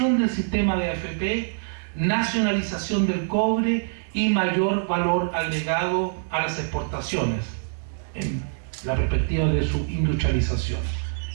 del sistema de AFP, nacionalización del cobre y mayor valor agregado a las exportaciones en la perspectiva de su industrialización.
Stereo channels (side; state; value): left; silent; digital silence